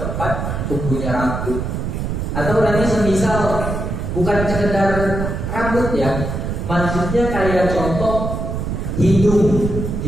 tumbuhnya rambut. Atau nanti semisal bukan sekedar rambut ya, maksudnya kayak contoh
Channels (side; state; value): right; noise; rumble, 3 dB below the sound